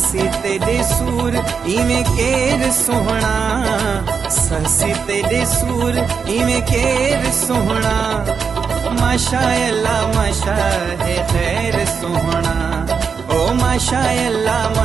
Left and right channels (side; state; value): left; quieter; 6.0 dB